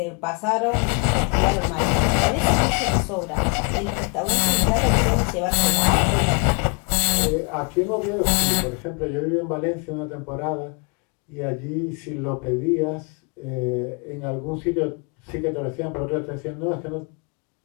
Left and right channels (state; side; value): quieter; right; 35.9 dB